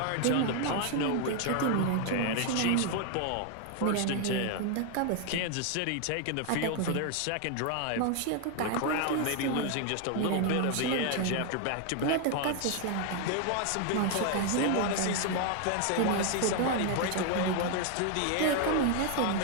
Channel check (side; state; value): both; different; correlation 0.00